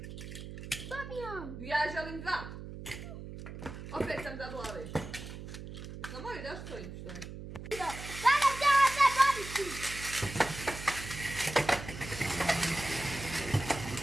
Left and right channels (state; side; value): noise; right; hum, 10 dB below the sound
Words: Ja želim dva! Opet sam zabila ove. Jesmo moji da stojim što je? Sada ćemo se boriti.